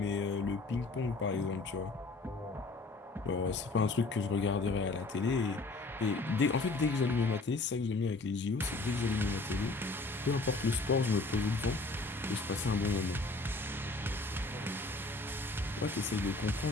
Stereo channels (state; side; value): quieter; right; 3.3 dB